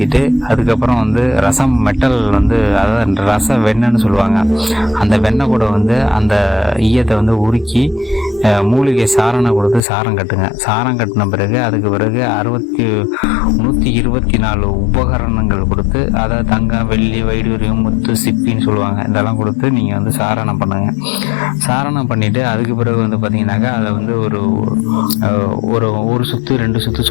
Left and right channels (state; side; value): drops out; right; at 9.8 s